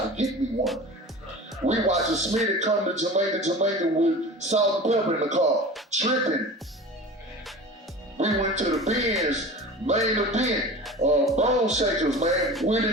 get me one. We watching Smitty come to Jamaica with salt and pepper in the car, tripping. We went to the Benz, main event, Bone Shakers, man,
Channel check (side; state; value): both; normal; correlation 0.36